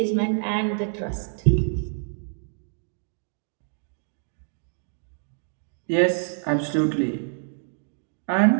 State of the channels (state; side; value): silent; left; digital silence